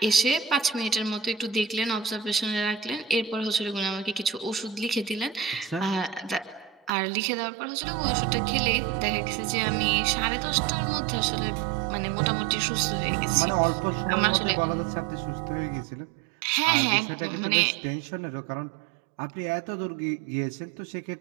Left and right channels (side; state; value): left; drops out; at 6.9 s